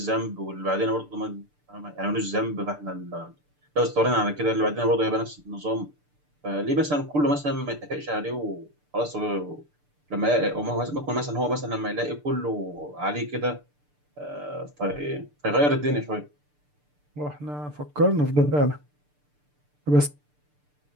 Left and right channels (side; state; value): left; late; 6.8 ms